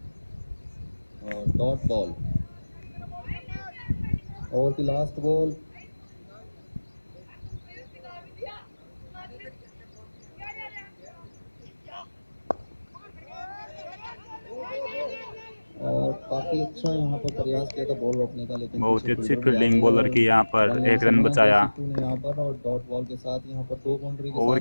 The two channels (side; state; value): both; inverted; correlation -1.00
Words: और डॉट बॉल, ओवर की लास्ट बॉल। और काफी अच्छा यहाँ पर प्रयास किया था बॉल रोकने का, लेकिन बहुत ही अच्छी फील्डिंग बॉलर की यहाँ पर। 1 रन बचाया। यहाँ पर और डॉट बॉल के साथ यहाँ पर 2 बाउंड्री। ओवर